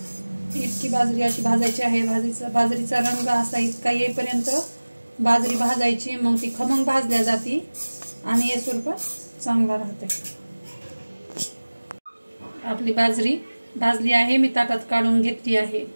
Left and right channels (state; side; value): inverted; both; correlation -1.00